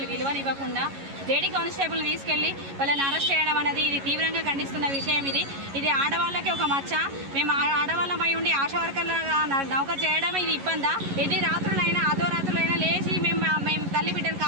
విలువనివ్వకుండా లేడీ కానిస్టేబుల్ తీసుకెళ్లి వాళ్ళని అరెస్ట్ చేయడం అనేది ఇది తీవ్రంగా ఖండిస్తున్న విషయం. ఇది ఆడవాళ్ళకి ఒక మచ్చ. మేము ఆడవాళ్ళమై ఉండి ఆశా వర్కర్లుగా నౌకరు చేయడం ఇది ఇబ్బందా? ఎన్ని రాత్రులైనా అర్ధరాత్రులైనా లేచి మేము తల్లి బిడ్డలు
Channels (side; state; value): left; late; 11 ms